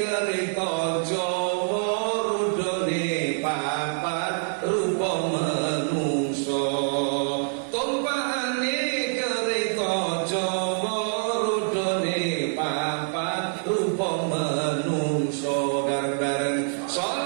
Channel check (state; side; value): silent; left; digital silence